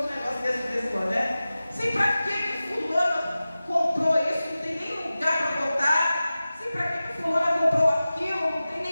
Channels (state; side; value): inverted; both; correlation -0.96